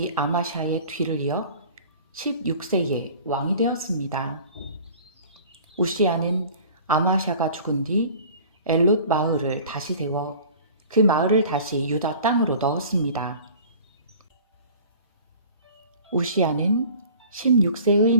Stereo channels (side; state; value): both; inverted; correlation -0.45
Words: 아마샤의 뒤를 이어 16세에 왕이 되었습니다. 우시야는 아마샤가 죽은 뒤 엘롯 마을을 다시 세워 그 마을을 다시 유다 땅으로 넣었습니다. 우시야는 16세의